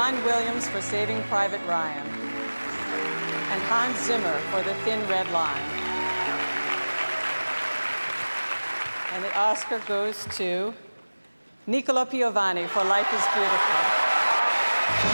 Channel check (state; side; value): inverted; both; correlation -1.00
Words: Williams for Saving Private Ryan, and Hans Zimmer for The Thin Red Line. And the Oscar goes to Nicola Piovani for Life is Beautiful.